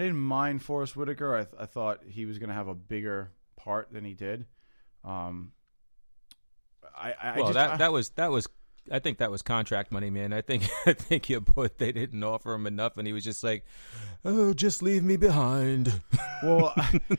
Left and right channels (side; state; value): both; inverted; correlation -1.00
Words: mind Forrest Whitaker. I thought he was going to have a bigger part than he did. I think that was contract money, man. I think your boy, they didn't offer him enough, and he was just like, "Oh, just leave me behind." Well,